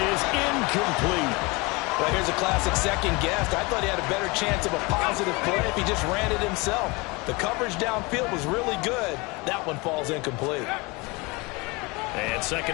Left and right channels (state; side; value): quieter; right; 26.0 dB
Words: is incomplete. Well, here's a classic second guess. I thought he had a better chance of a positive play if he just ran it himself. The coverage downfield was really good. That one falls incomplete. And